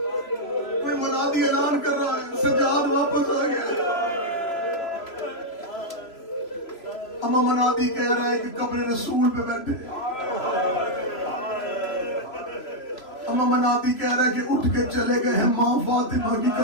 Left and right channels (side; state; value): right; late; 3.0 ms